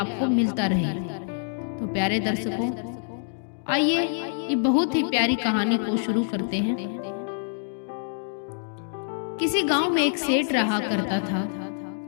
मिलता रहे। तो प्यारे दर्शकों, आइए ये बहुत ही प्यारी कहानी को शुरू करते हैं। किसी गांव में एक सेठ रहा करता था।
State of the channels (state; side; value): silent; right; digital silence